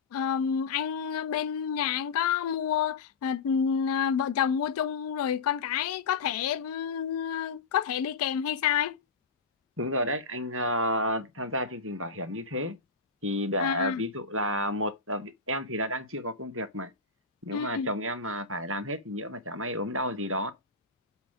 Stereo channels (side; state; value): right; quieter; 4.4 dB